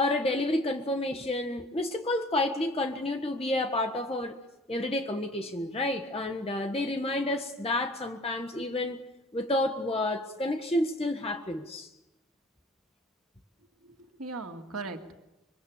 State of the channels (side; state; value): both; normal; correlation 0.49